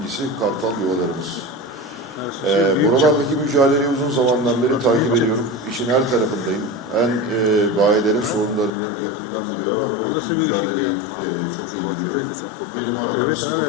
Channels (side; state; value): right; drops out; at 8.7 s